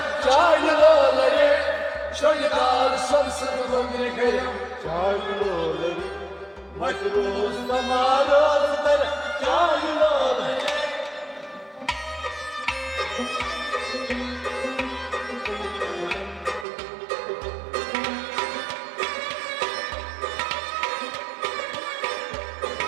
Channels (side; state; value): left; drops out; at 16.7 s